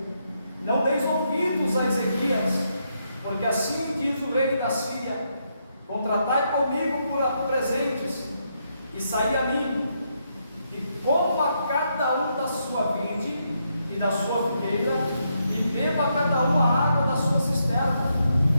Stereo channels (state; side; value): inverted; both; correlation -0.79